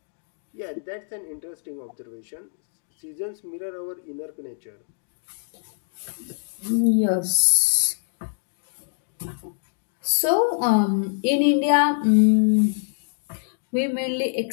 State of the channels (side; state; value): right; silent; digital silence